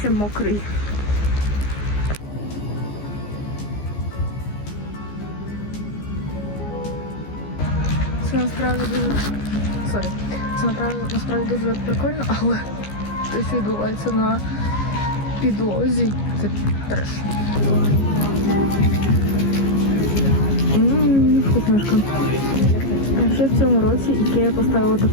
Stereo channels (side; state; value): right; late; 15 ms